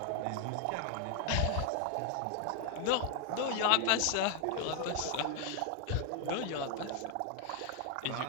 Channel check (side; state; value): both; different; correlation 0.00